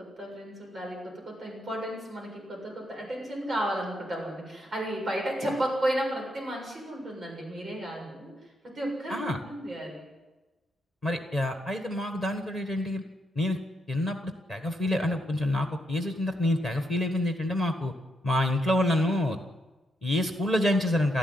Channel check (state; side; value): normal; both; correlation 0.79